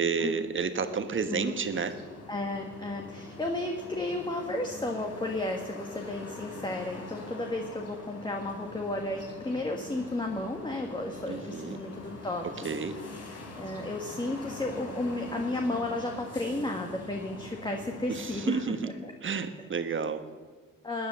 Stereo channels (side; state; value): both; normal; correlation 0.44